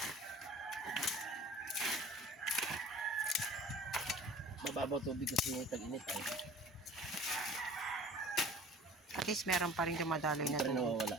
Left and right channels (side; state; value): both; normal; correlation 0.46